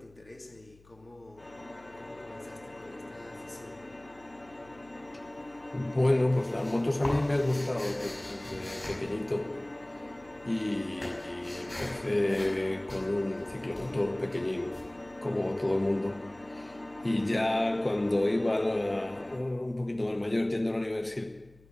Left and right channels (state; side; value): noise; left; hum, 27 dB below the sound